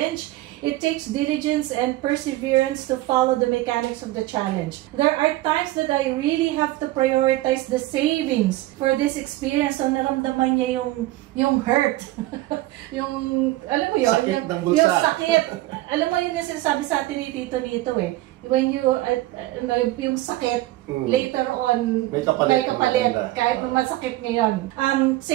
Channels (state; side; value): quieter; left; 17.1 dB